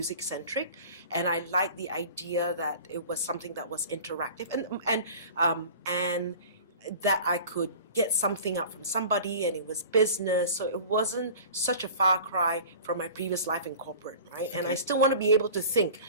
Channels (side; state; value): both; inverted; correlation -0.40